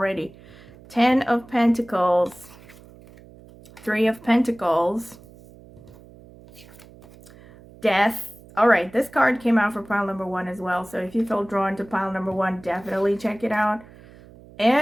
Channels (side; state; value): right; noise; hum, 22 dB below the sound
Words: 10 of Pentacles. 3 of Pentacles. Death. All right, this card came out for pile number 1 as well. So if you feel drawn to pile number 1, definitely check it out.